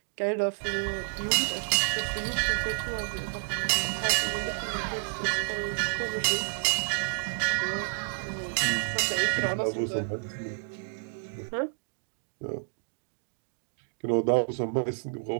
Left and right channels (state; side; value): silent; left; 58 dB below the other